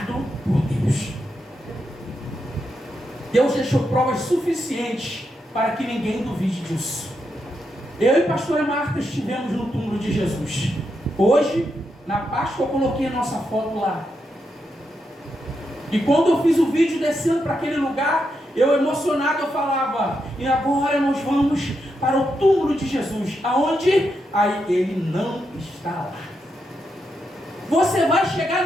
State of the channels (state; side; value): normal; both; correlation 0.83